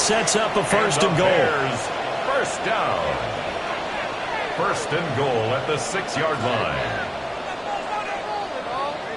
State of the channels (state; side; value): identical; both; correlation 1.00